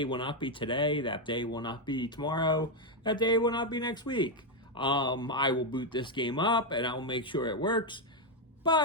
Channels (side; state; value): both; normal; correlation 0.03